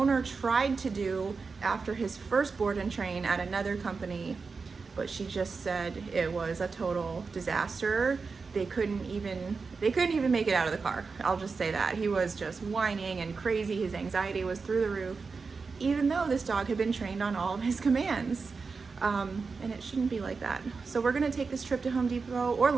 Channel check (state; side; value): quieter; left; 4.7 dB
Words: tried to do after his first board and train at another company, but she just said it was a total disaster. They couldn't even make it out of the car. I'll just say that. He was just whining and crazy. His anxiety was through the roof, even though this dog had been trained on all of his commands. And it shouldn't be like that. So we're gonna take this trip to Home Depot or